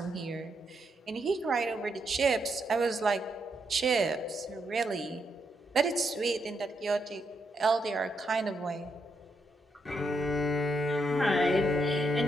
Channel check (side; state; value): both; normal; correlation 0.80